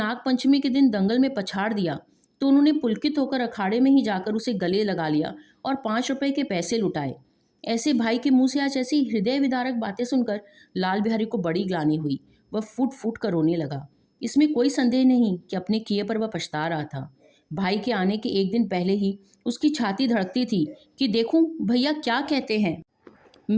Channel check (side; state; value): both; identical; correlation 1.00